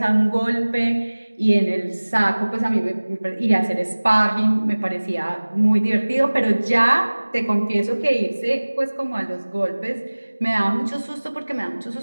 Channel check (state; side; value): inverted; both; correlation -1.00